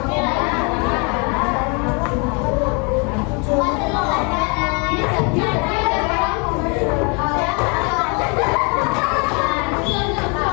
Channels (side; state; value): right; quieter; 33.5 dB